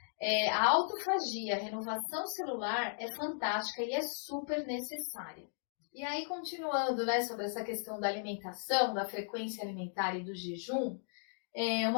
a autofagia, a renovação celular é fantástica e é super necessária. E aí, continuando, né, sobre essa questão da alimentação, da frequência alimentar e do jejum,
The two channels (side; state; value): right; silent; digital silence